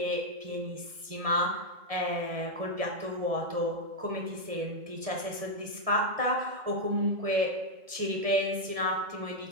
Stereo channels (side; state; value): left; late; 1.7 ms